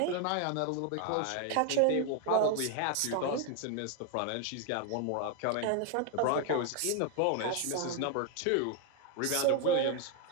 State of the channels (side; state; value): both; different; correlation 0.00